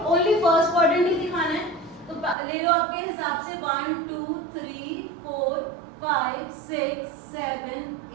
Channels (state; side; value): drops out; left; at 2.4 s